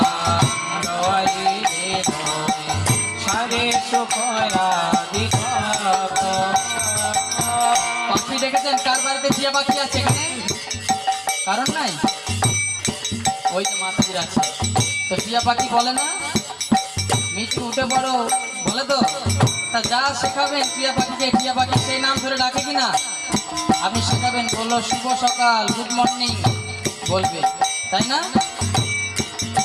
দওয়াইলে লয়, সারি সুকয়াদি কত। পাখি দেখেছেন? কার বাড়িতে টিয়া পাখি আছে এখানে? কারণ নাই? ওই যে মাতাজির আছে। তো টিয়া পাখি বলে না মিটি উঠে পড়ো, বলে তো? তা যা শেখাবেন টিয়া পাখিকে, টিয়া পাখি সেই নাম ধরে ডাকে কিনা? আপনি শেখাবেন, বললো শুভ সকাল, গুড মর্নিং বলবে, তাই না?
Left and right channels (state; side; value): identical; both; correlation 1.00